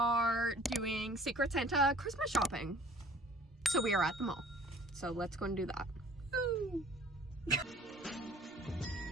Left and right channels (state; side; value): normal; both; correlation 0.51